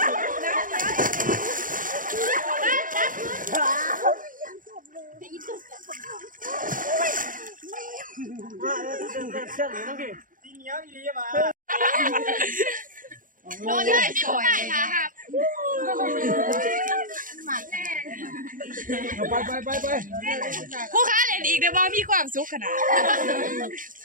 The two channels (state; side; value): late; left; 0.39 ms